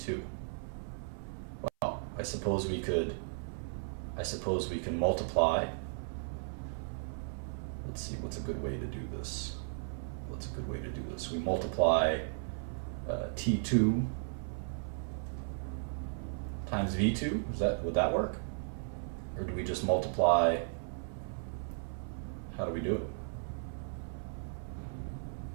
Well, I suppose we can multiply. Let's see, what's a good way to do this? We multiply T2 times V2. Would that work? Or do we just multiply? How do we do it?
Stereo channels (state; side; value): silent; left; 54 dB below the other